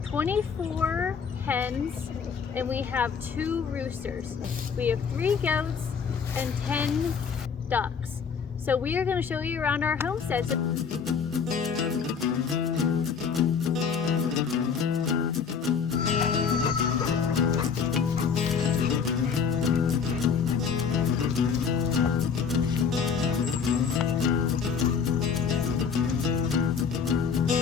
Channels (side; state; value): right; quieter; 6.3 dB